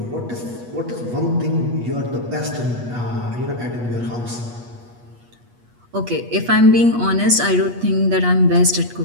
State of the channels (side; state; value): left; late; 8.3 ms